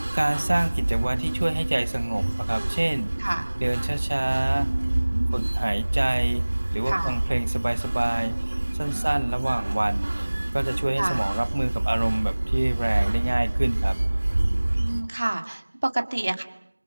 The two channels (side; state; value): both; inverted; correlation -1.00